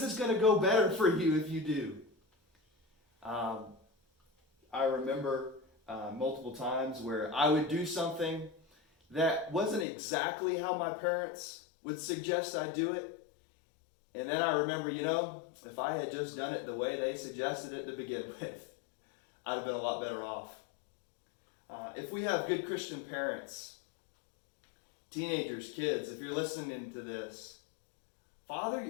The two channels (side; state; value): right; drops out; at 9.9 s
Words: it's going to go better for you if you do. I remember multiple times where I would do something that wasn't exactly how my parents would suggest I do it. And then I remember, if I had just done it the way they suggested it to begin with, I'd have been a lot better off. If we have good Christian parents, teenagers, kids, if you're listening to this,